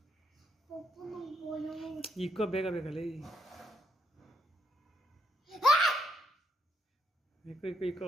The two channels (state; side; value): normal; both; correlation 0.76